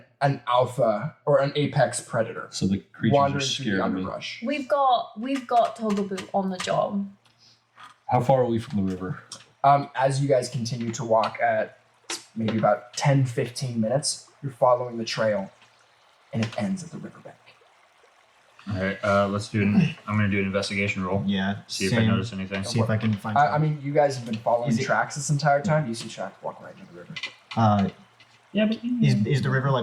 alpha or an apex predator. So the creatures wandering are through the scaring me. underbrush. We've got Togebu on the job. How far are we from the river? As you guys continue to walk at maybe about 10-15 minutes, you're following the trail, and it ends at the riverbank. All right, let's do. I'm gonna do an investigation roll. Yeah. See if I notice anything. See if I can find. I mean, you guys have been following Is it- tracks this entire time. You see tracks walk right into the river. Yeah, but Is the river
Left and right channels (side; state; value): both; identical; correlation 1.00